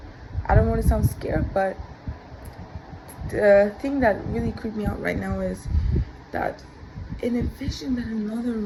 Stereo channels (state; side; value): identical; both; correlation 1.00